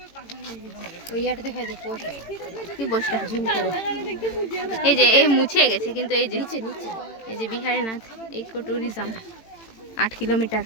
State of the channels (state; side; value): late; right; 18 ms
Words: কি পোস্টটা এই যে এই মুছে গেছে, কিন্তু এই যে এই যে Biharinath eco tourism 8 kilometre.